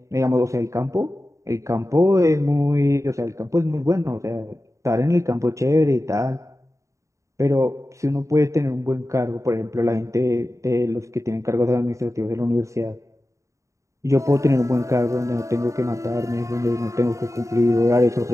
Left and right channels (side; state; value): left; late; 0.15 ms